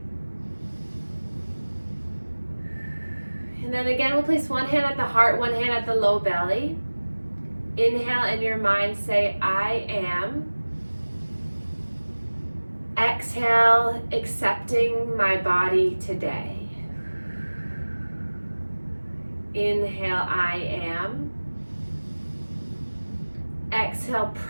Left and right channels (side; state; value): both; inverted; correlation -1.00